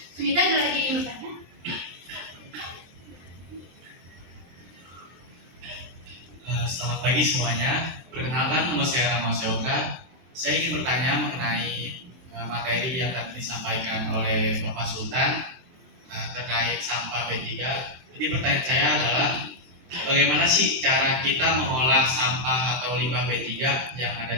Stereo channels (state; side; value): late; left; 23 ms